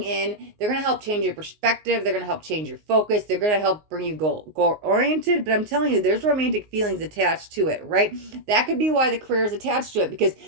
in. They're going to help change your perspective. They're going to help change your focus. They're going to help bring you goal-oriented, but I'm telling you, there's romantic feelings attached to it, right? That could be why the career is attached to it, because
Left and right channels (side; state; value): left; late; 19 ms